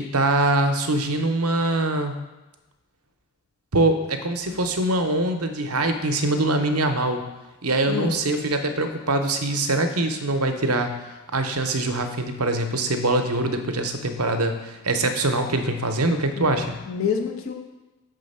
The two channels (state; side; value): normal; both; correlation 0.12